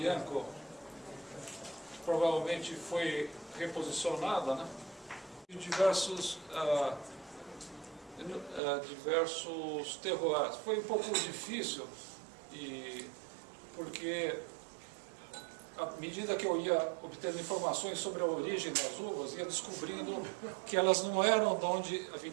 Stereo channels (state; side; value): drops out; left; at 8.6 s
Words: provavelmente foi reposicionada, né? E diversos terroirs. Foi um pouco difícil, porque à medida que eu ia obtendo informações sobre a origem das uvas, ia descobrindo que elas não eram de onde a